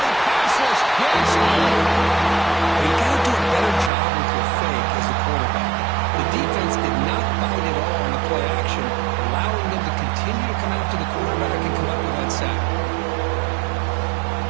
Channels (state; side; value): drops out; left; at 3.9 s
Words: Passes, gets You got to do a better job with your fake as a quarterback. The defense did not bite at all on the play action, allowing them to continue to come after the quarterback and come up with that sack.